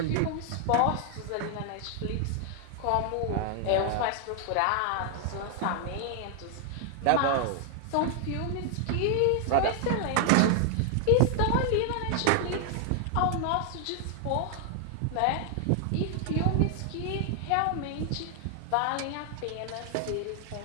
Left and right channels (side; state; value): both; different; correlation 0.00